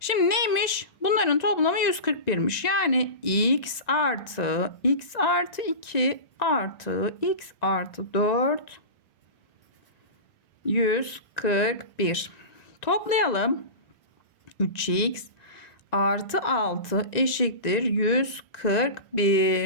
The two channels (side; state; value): right; late; 1.9 ms